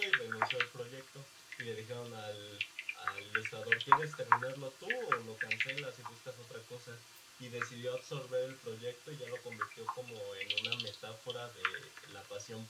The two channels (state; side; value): identical; both; correlation 1.00